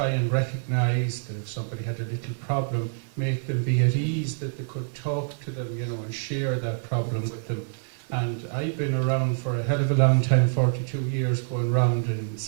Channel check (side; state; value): left; silent; digital silence